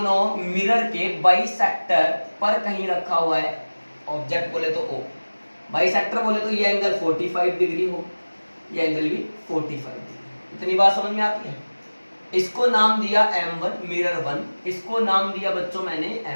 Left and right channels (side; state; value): both; inverted; correlation -1.00